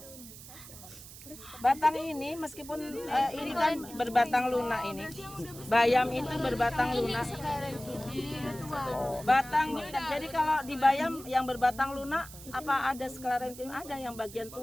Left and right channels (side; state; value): right; noise; hiss, 16 dB below the sound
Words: Batang ini meskipun ini kan berbatang lunak ini. Bayam itu berbatang lunak. Batang, jadi kalau di bayam yang berbatang lunak apa ada sklerenkim? Ada yang bagian